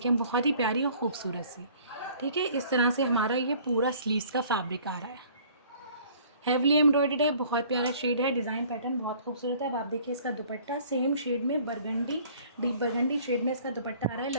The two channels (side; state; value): both; inverted; correlation -0.54